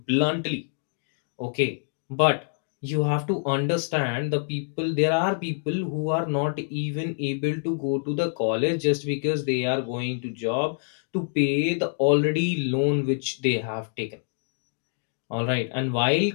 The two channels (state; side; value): silent; right; digital silence